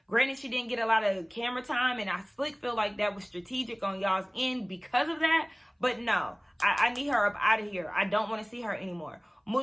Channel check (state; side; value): identical; both; correlation 1.00